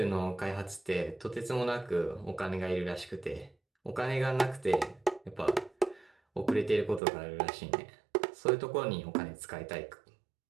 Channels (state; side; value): drops out; left; at 7.0 s